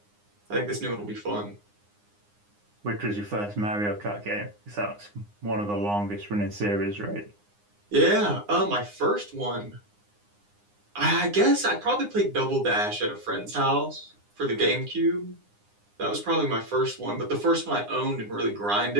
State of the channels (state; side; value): late; left; 9.8 ms